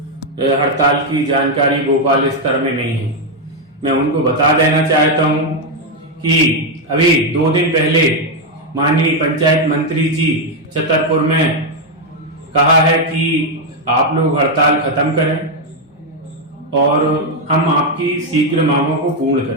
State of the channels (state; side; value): normal; both; correlation 0.03